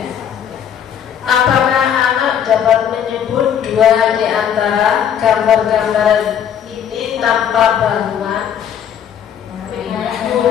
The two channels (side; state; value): right; quieter; 8.9 dB